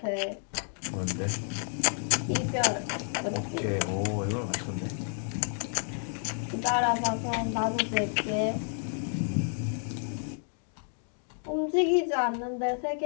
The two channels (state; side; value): silent; right; 58 dB below the other